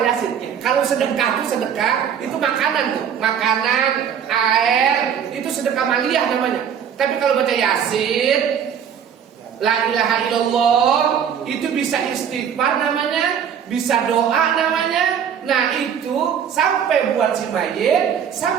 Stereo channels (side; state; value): left; quieter; 8.2 dB